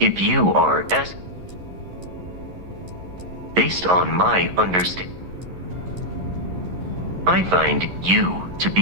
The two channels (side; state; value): left; late; 11 ms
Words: you are as... Based on my understanding... I find you to